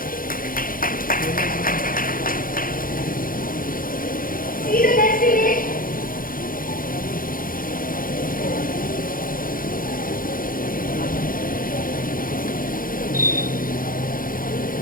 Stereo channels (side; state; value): right; late; 0.41 ms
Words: See the next image.